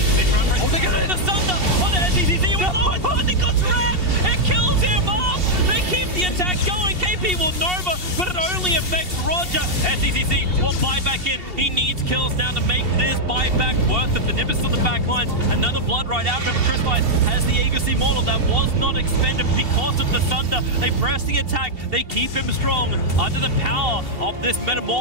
They try and break. Oh, they got it! The Thunder on the SCCC with low, and it got red! It kills him off! They keep the attack going. KP will Nova, but it only affects Roger. SCCC will buy back in. He needs kills now to make this buyback worth it. The Nimbus on the back lines. Another Blood right out. Remember, Crystallized has the Aegis Immortal that was not expended because of the Thunder. They press the attack. They keep him strong under the power of this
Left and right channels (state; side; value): late; left; 2.7 ms